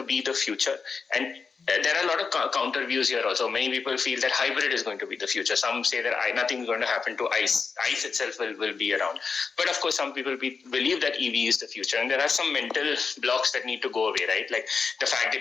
be the future? And there are a lot of counter views here also. Many people feel that hybrid is going to be the future. Some say that nothing is going to happen to ICE. ICE itself will be around. But of course, some people believe that EV is the future. And there are some mental blocks that need to go away, right? Like the fact that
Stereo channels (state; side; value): quieter; right; 5.1 dB